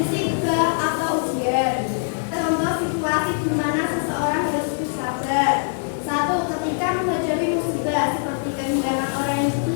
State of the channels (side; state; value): right; silent; digital silence